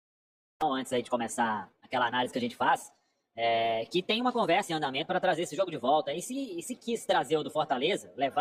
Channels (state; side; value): identical; both; correlation 1.00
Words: Antes aí de começar aquela análise que a gente faz, que tem uma conversa em andamento para trazer esse jogo de volta. E se quis trazer o do Fortaleza,